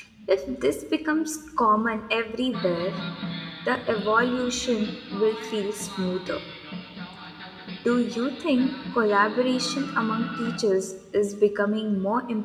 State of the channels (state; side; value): identical; both; correlation 1.00